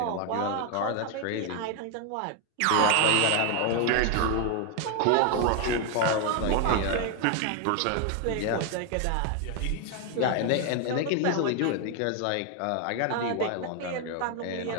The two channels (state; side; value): different; both; correlation 0.00